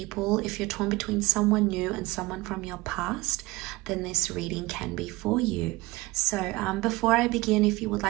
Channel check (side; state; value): left; quieter; 21.0 dB